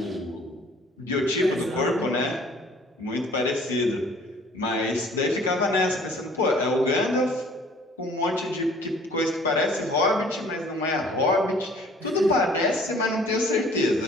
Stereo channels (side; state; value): both; normal; correlation 0.54